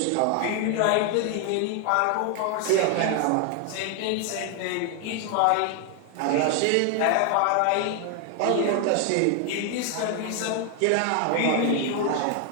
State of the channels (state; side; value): different; both; correlation 0.01